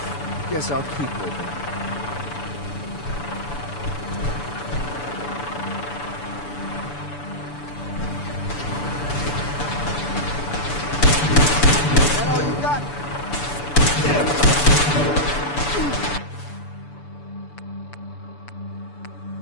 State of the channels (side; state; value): right; late; 6.9 ms